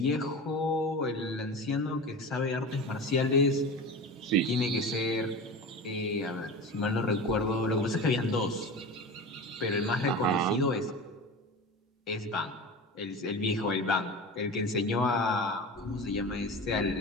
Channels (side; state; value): both; normal; correlation 0.30